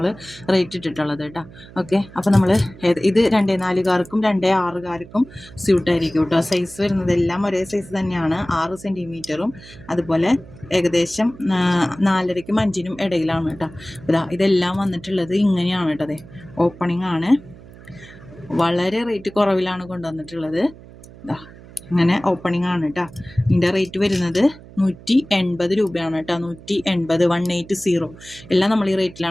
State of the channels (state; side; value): noise; right; hum, 19 dB below the sound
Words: റേറ്റ് ഇട്ടിട്ടുള്ളത് കേട്ടോ. ഓക്കെ, അപ്പോൾ നമ്മൾ ഇത് 2.4കാർക്കും 2.6കാർക്കും സ്യൂട്ടായിരിക്കും കേട്ടോ. സൈസ് വരുന്നതെല്ലാം ഒരേ സൈസ് തന്നെയാണ്. 6 സെൻറ്റിമീറ്ററും അതുപോലെ ഏകദേശം 4.5ക്കും 5നും ഇടയിലാണ് കേട്ടോ. ഇതെല്ലാം വന്നിട്ടുള്ളത് ഇങ്ങനെയാണ് കേട്ടോ. അതെ, ഓപ്പണിംഗ് ആണ്. വളരെ റേറ്റ് കുറവിലാണ് കൊണ്ടുവന്നിട്ടുള്ളത്. ഇതാ അങ്ങനെ ഓപ്പണിംഗ് ആണ് കേട്ടോ. ഇതിൻ്റെ റേറ്റ് വരുന്നത് 180 രൂപയാണ് കേട്ടോ. 180, 180. എല്ലാം നമ്മൾ ഈ